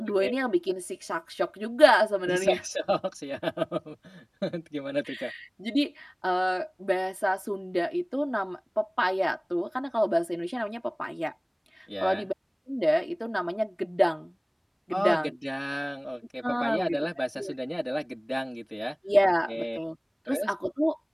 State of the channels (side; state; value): both; identical; correlation 1.00